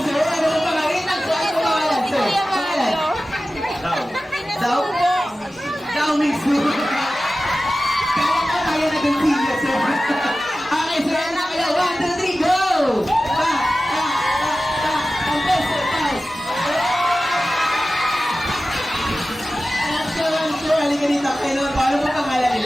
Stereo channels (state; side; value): normal; both; correlation 0.95